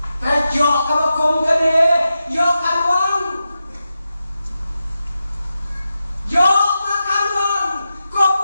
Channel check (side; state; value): both; inverted; correlation -0.90